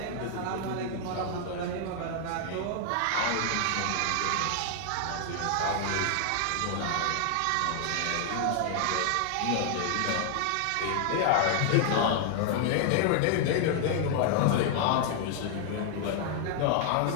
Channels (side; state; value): both; different; correlation 0.00